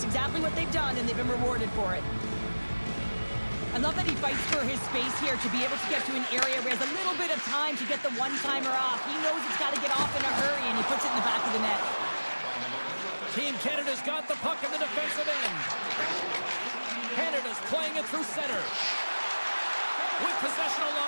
exactly what they've done, and they've been rewarded for it. I love that he fights for his space here to be able to get to an area where he has a little bit of time to get the one-timer off. He knows it's got to get off in a hurry, and he puts it in the back of the net. Team Canada's got the puck in the defensive end. Canada's playing it through center. With possession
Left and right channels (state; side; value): inverted; both; correlation -1.00